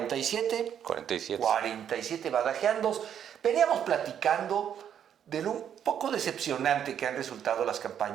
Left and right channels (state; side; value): quieter; left; 9.1 dB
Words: 47 Badajeandos. Veníamos platicando de lo un poco decepcionante que han resultado las